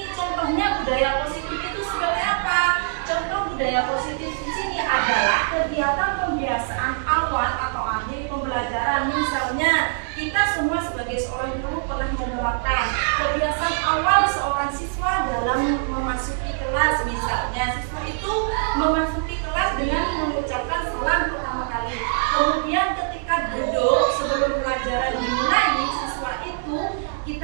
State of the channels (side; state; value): left; silent; 63 dB below the other